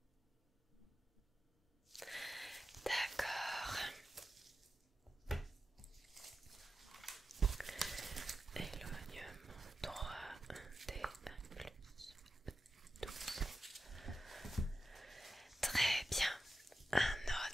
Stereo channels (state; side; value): normal; both; correlation 0.92